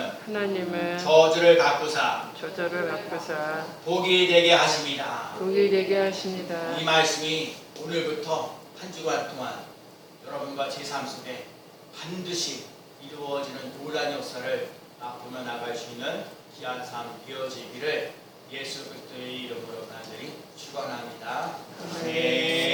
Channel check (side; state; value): both; identical; correlation 1.00